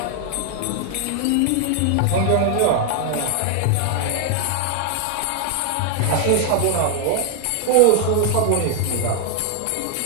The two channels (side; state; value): both; different; correlation 0.00